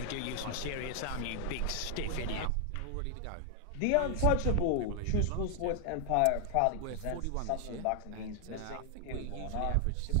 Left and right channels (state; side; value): different; both; correlation 0.00